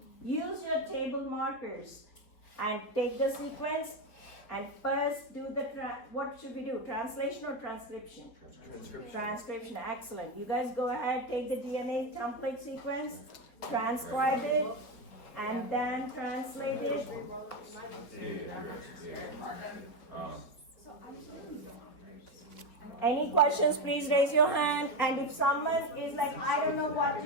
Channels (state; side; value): late; right; 4.3 ms